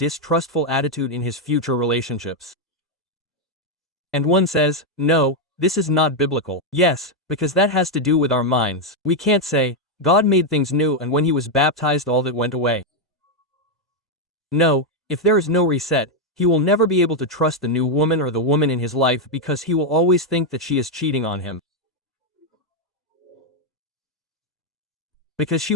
attitude in his future relationships. And one says, no, this is not biblical. Yes, because that has to do with our minds. We can't say, God made things new and when he was baptized all that went away. No, if there is no reset, he will never be able to trust the new woman or the woman in his life because he will always think that she is cheating on him. Because she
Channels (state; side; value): normal; both; correlation 0.02